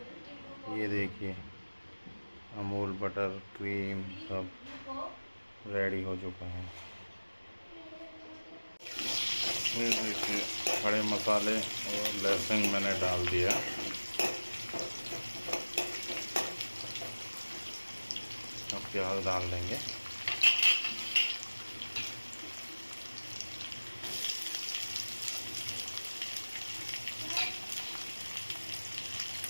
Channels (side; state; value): both; inverted; correlation -1.00